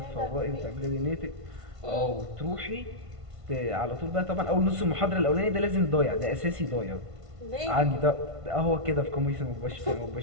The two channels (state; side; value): late; left; 1.5 ms